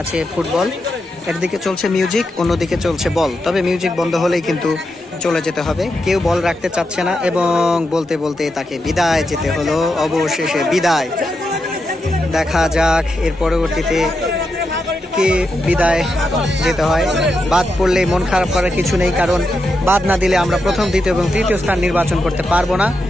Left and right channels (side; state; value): both; normal; correlation 0.86